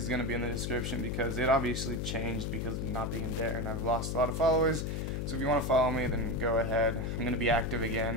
going to be in the description because it obviously changed because of not being Dare, and I've lost a lot of followers. So if you want to follow me, then go ahead. I'm going to be active again.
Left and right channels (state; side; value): noise; left; hum, 2 dB below the sound